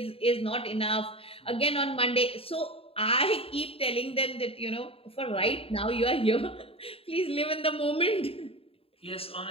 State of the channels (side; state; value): right; late; 0.27 ms